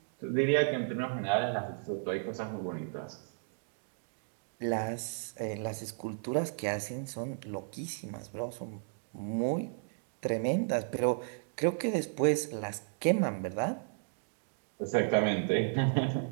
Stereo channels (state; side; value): silent; left; digital silence